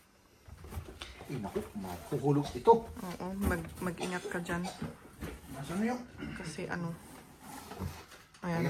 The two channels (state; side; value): identical; both; correlation 1.00